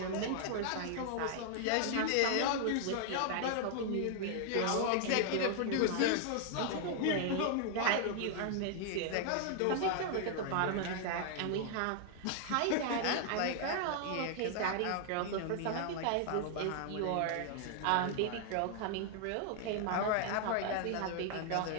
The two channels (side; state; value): both; different; correlation 0.00